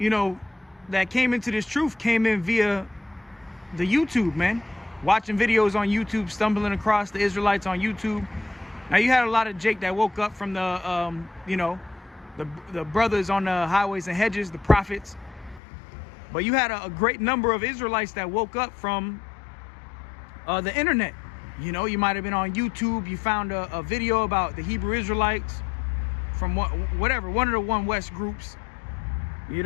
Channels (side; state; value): right; drops out; at 15.6 s